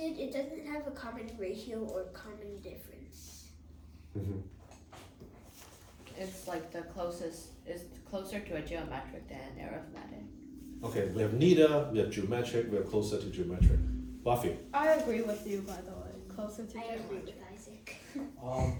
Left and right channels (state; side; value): identical; both; correlation 1.00